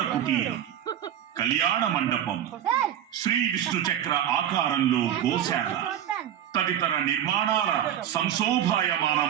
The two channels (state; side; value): quieter; left; 10.4 dB